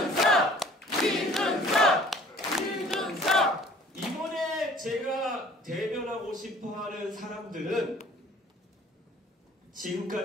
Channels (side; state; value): both; normal; correlation 0.51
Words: 이번에 제가 대변하고 싶어하는 사람들은